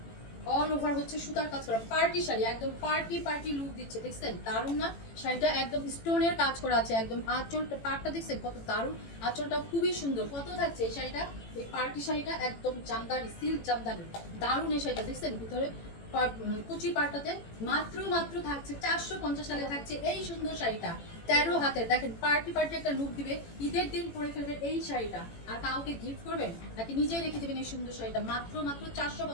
অল ওভার হচ্ছে সুতার কাজ করা পার্টি শাড়ি, একদম পার্টি লুক দিচ্ছে। দেখছেন দারুণ না শাড়িটা? একদম স্টোনের কাজ করা আছে, একদম আঁচলটা পাড়টা দেখছেন কত দারুণ, আঁচলটা খুবই সুন্দর। কত থাকছে এই শাড়িটা? এই পার্টি শাড়িটা একদম জামদানি, সিল্ক জামদানি, দারুণ এই শাড়িটা। দেখছেন ভিতরে কুচি পাড়টাতে মাত্র মাত্র থাকছে 450 টাকা থাকছে এই সুন্দর শাড়িটা। 13 হাতের, দেখেন পার্টি একটা লুক দিবে, ঈদের দিন পরে ফেলবেন এই শাড়িটা। আর কাউকে গিফট করবেন নাকি নিজেই রেখে দেবেন এই সুন্দর শাড়িটা। মাত্র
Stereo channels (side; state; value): right; late; 18 ms